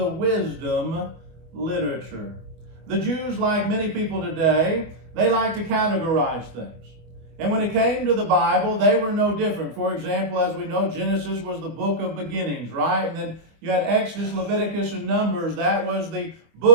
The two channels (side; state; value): left; late; 25 ms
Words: wisdom literature. The Jews, like many people today, they like to categorize things. And when it came to the Bible, they were no different. For example, as we know, Genesis was the book of beginnings, right? And then you had Exodus, Leviticus, and Numbers. That was the